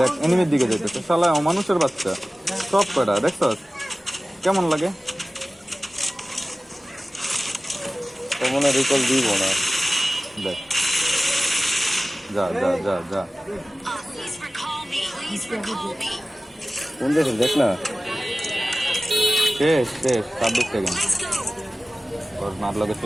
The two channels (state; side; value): normal; both; correlation 0.97